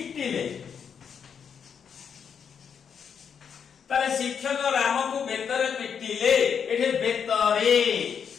ताले शिक्षक रामको बेतरे पिटिले एठे बेतरे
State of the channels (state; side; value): quieter; right; 7.2 dB